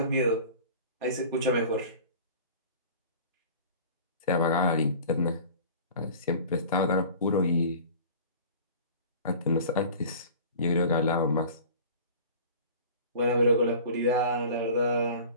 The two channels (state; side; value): inverted; both; correlation -0.42